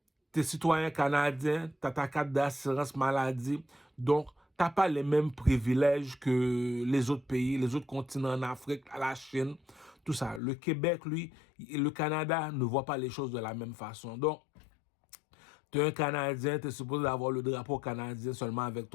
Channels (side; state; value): right; drops out; at 10.4 s